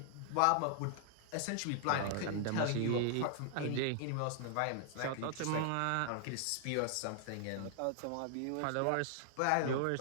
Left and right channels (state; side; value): different; both; correlation -0.01